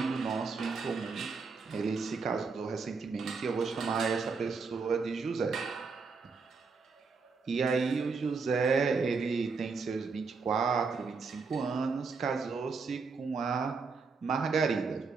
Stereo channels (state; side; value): quieter; left; 4.8 dB